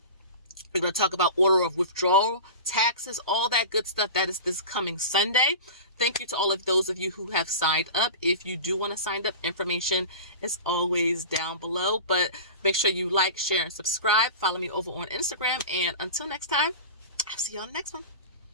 We're going to talk about order of withdrawal, taxes, all that good stuff. That is this coming Sunday. Thank you to all of those of you who have signed up. If you do want to sign up, information is always down below. But make sure you like, share, and subscribe. Follow me over on Instagram. And until next time, I'll see you on the next one.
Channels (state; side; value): inverted; both; correlation -0.32